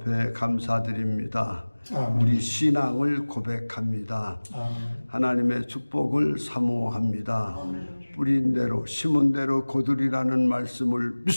감사드립니다. 우리 신앙을 고백합니다. 하나님의 축복을 사모합니다. 뿌린 대로 심은 대로 거두리라는 말씀을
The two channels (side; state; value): both; inverted; correlation -1.00